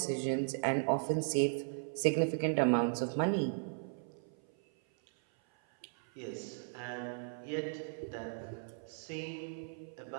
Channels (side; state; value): left; silent; 53 dB below the other